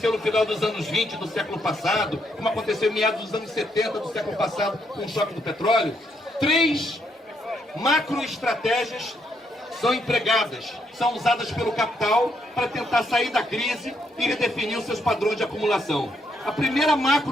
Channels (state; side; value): normal; both; correlation 0.75